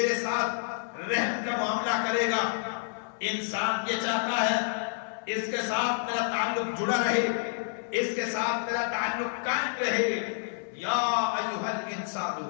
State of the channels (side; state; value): right; silent; 59 dB below the other